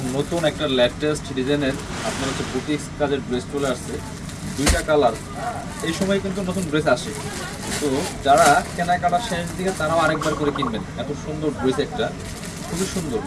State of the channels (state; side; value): identical; both; correlation 1.00